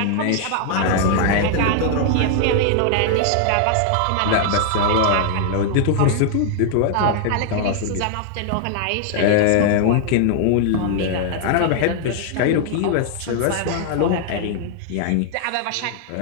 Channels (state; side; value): different; both; correlation 0.00